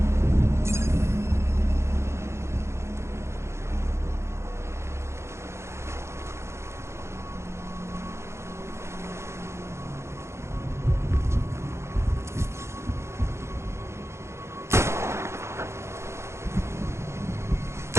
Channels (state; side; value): late; left; 0.13 ms